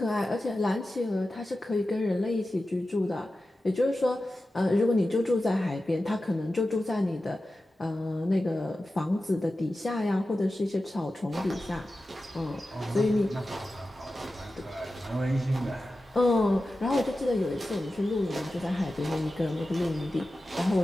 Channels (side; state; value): both; normal; correlation 0.93